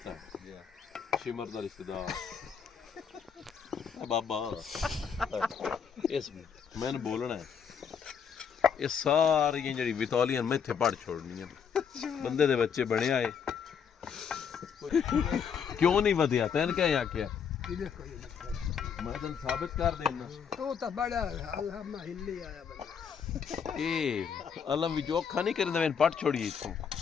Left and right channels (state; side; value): quieter; right; 7.0 dB